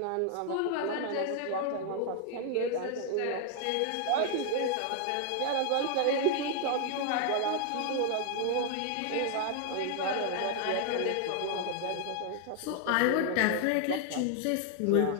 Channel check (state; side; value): different; both; correlation 0.00